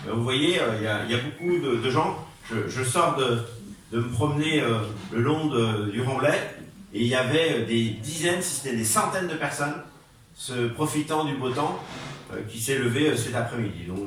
Vous voyez, il y a beaucoup de gens. Je sors de me promener le long du Remblai, et il y avait des dizaines, si ce n'est des centaines de personnes profitant du beau temps qui s'est levé cet après-midi. Donc vous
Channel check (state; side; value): identical; both; correlation 1.00